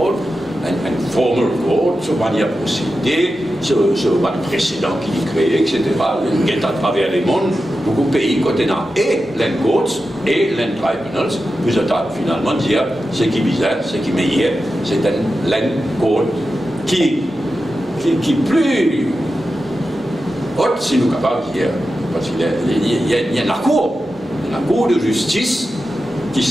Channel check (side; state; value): both; normal; correlation 0.91